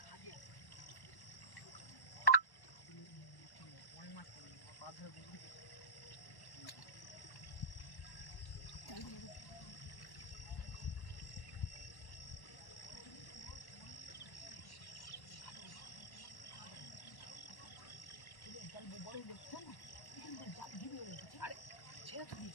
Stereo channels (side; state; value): right; late; 1.1 ms